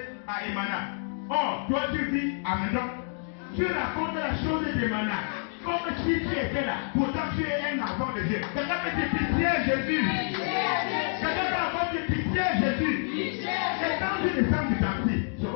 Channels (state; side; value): silent; right; 59 dB below the other